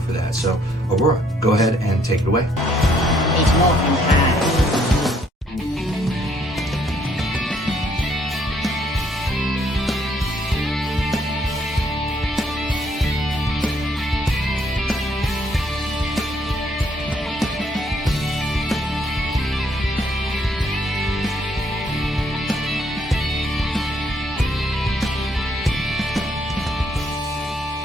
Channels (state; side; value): normal; both; correlation 0.68